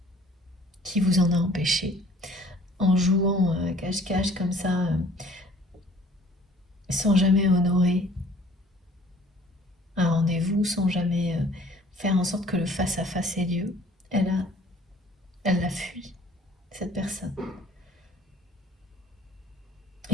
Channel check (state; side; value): normal; both; correlation 0.53